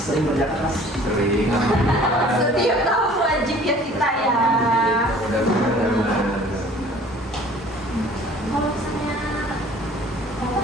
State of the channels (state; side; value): normal; both; correlation 0.50